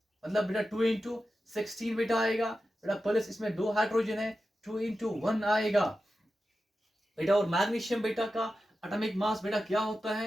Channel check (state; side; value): normal; both; correlation 0.92